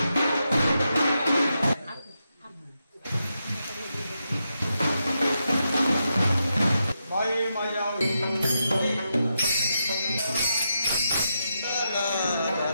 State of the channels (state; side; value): inverted; both; correlation -0.85